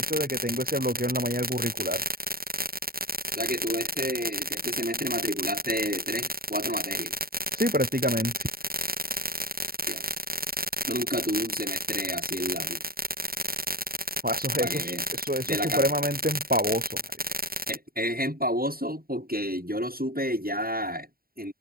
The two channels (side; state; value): left; late; 0.43 ms